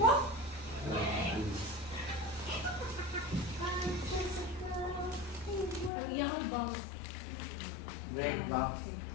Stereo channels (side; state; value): right; drops out; at 5.9 s